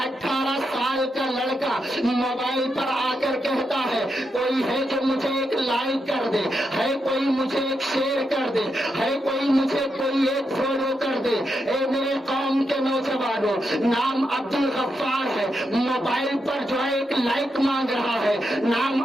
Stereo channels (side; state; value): both; normal; correlation 0.84